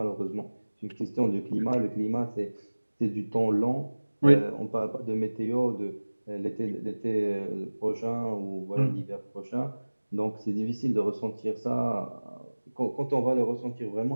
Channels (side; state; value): both; inverted; correlation -1.00